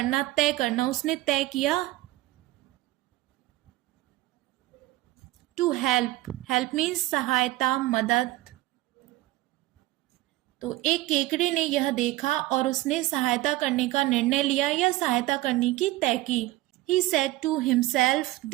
तय करना। उसने तय किया टू हेल्प, हेल्प मीन्स सहायता, मदद। तो एक केकड़े ने यह देखा और उसने सहायता करने का निर्णय लिया या सहायता करने की तय की। He said to himself,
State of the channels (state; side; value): quieter; left; 17.8 dB